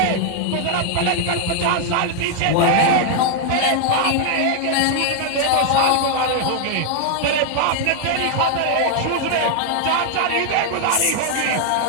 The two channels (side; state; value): both; different; correlation 0.00